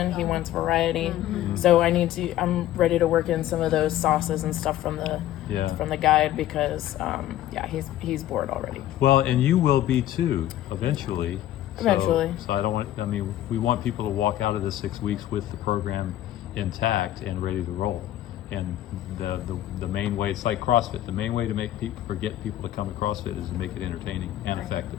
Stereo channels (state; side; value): quieter; right; 13.2 dB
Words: He wants variety. So I'm ready to work in some of those sauces and stuff from the guide because he's bored already. Well, and you will be too, eventually. Eventually. So we want people to walk out of the 6 weeks with the program intact and ready to roll. And the main way, it's like CrossFit, the main way to get people to come to CrossFit is to make it entertaining and